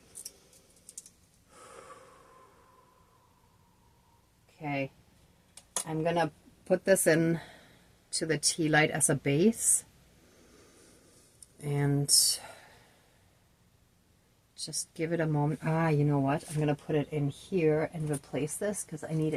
Okay, I'm gonna put this in to the tea light as a base and just give it a moment. You know what? I'm gonna put it in here and replace this because I need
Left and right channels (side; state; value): both; identical; correlation 1.00